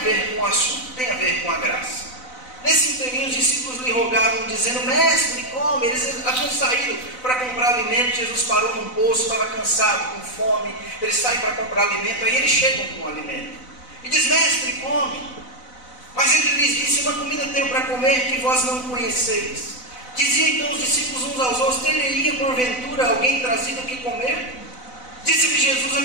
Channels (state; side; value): late; right; 4.0 ms